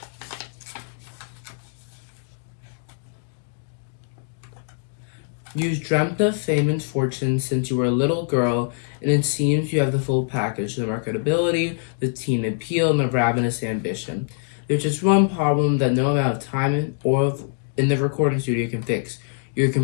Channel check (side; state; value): right; silent; digital silence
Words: You've dreamt of fame and fortune since you were a little girl, and it seems you have the full package: the marketability, the teen appeal, and the ravenous ambition. There's just one problem that no amount of time in the recording studio can fix. You're